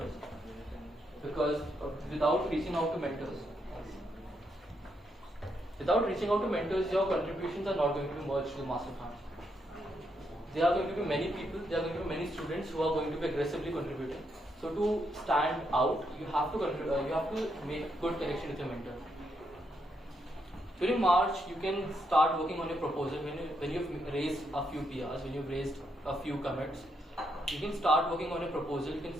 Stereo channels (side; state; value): both; normal; correlation 0.78